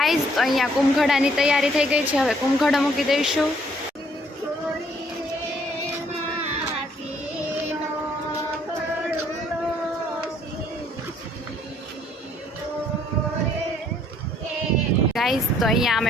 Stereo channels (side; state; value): both; normal; correlation 0.64